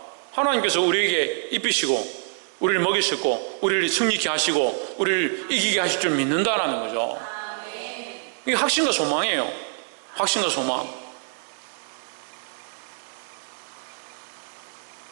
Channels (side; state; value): left; silent; digital silence